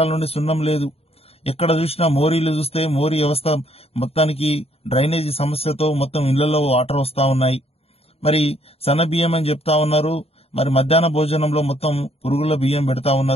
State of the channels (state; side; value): late; right; 0.29 ms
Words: నుండి సున్నం లేదు. ఎక్కడ చూసినా మోరీలు చూస్తే మోరీ వ్యవస్థ మొత్తానికి డ్రైనేజీ సమస్యతో మొత్తం ఇళ్లలో వాటర్ వస్తా ఉన్నాయి. మరి సన్న బియ్యం అని చెప్తా ఉన్నారు, మరి మధ్యాహ్న భోజనంలో మొత్తం పురుగుల బియ్యం పెడతా